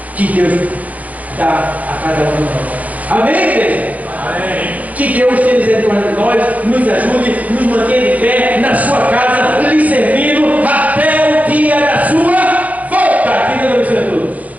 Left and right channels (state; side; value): late; left; 0.074 ms